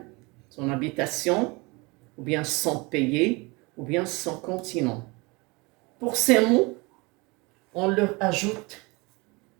son habitation, ou bien son pays, ou bien son continent. Pour ces mots, on leur ajoute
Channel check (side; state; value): left; quieter; 26.2 dB